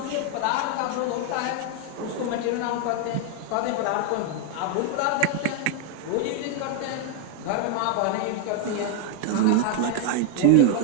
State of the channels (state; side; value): different; both; correlation 0.01